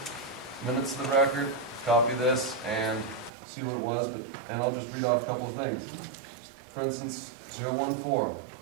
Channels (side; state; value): left; drops out; at 3.3 s